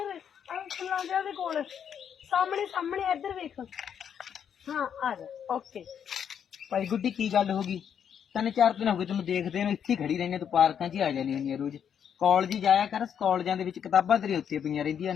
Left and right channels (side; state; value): right; quieter; 8.3 dB